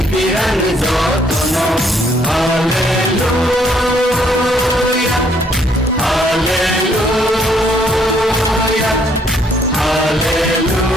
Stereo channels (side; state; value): both; normal; correlation 0.67